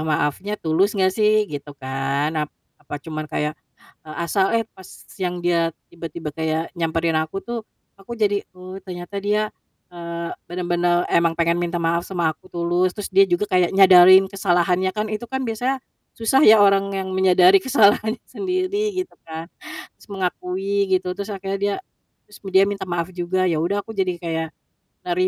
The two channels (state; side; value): identical; both; correlation 1.00